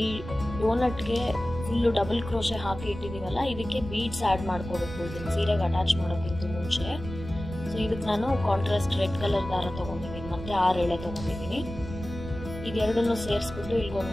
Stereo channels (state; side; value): noise; right; rumble, 10 dB below the sound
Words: ಈ ಡೋನಟ್ಗೆ ಫುಲ್ ಡಬಲ್ ಕ್ರೋಶೆ ಹಾಕಿ ಇಟ್ಟಿದೀವಲ್ಲ, ಇದಕ್ಕೆ ಬೀಡ್ಸ್ ಆಡ್ ಮಾಡ್ಕೋಬೇಕು ಇದನ್ನ ಸೀರೆಗೆ ಅಟ್ಯಾಚ್ ಮಾಡೋಕ್ಕಿಂತ ಮುಂಚೆ. ಸೊ ಇದಕ್ಕೆ ನಾನು ಕಾಂಟ್ರಾಸ್ಟ್ ರೆಡ್ ಕಲರ್ ದಾರ ತಗೊಂಡಿದ್ದೀನಿ, ಮತ್ತೆ 6 ಎಳೆ ತಗೊಂಡಿದ್ದೀನಿ. ಇದೆರಡನ್ನು ಸೇರಿಸ್ಬಿಟ್ಟು ಇಲ್ಲಿ